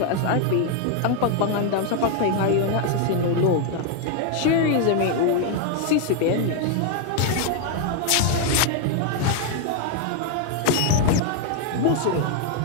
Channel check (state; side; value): different; both; correlation 0.00